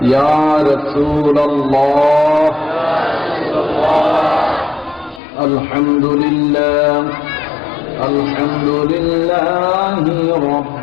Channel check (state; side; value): drops out; right; at 5.2 s